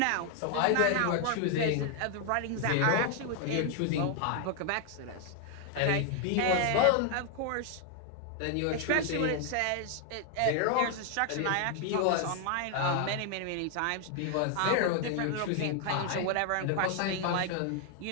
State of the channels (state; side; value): different; both; correlation 0.00